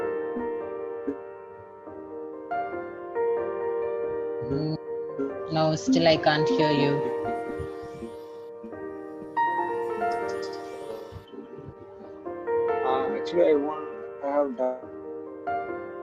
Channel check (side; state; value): both; identical; correlation 1.00